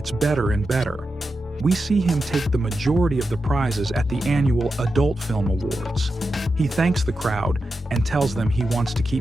better and better. We see him take the majority of the prizes at the annual Adult Film Awards. He thanks the crowd and tells them he wants to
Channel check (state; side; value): normal; both; correlation 0.89